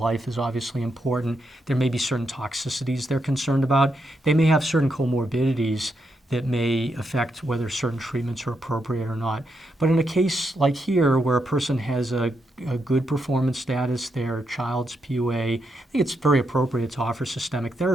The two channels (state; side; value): normal; both; correlation 0.82